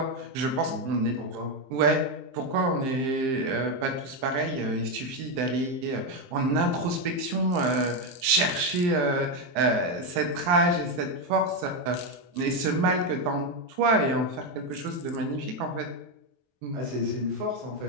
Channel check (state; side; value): late; left; 23 ms